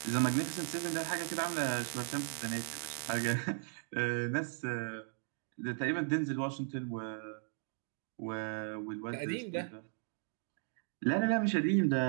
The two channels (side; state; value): left; silent; 53 dB below the other